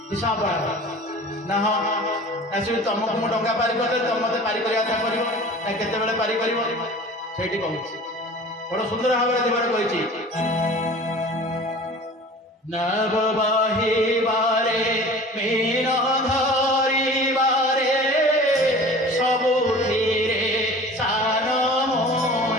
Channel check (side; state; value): both; normal; correlation 0.42